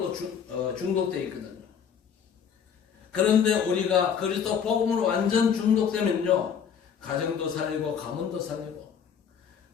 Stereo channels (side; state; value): right; quieter; 7.5 dB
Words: 중독되어 있거든요. 그런데 우리가 그리스도 복음으로 완전 중독되면요, 가정도 살리고 가문도 살리고